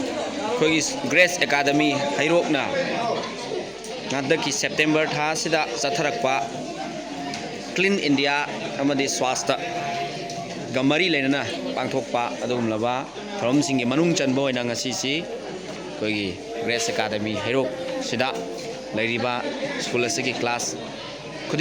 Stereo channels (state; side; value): identical; both; correlation 1.00